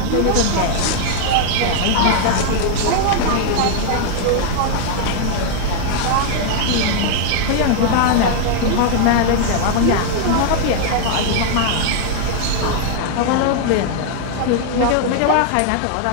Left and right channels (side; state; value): both; different; correlation 0.00